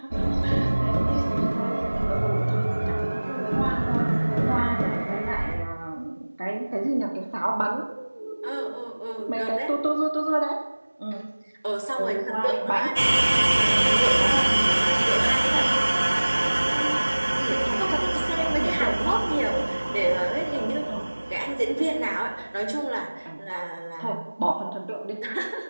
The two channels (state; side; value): inverted; both; correlation -1.00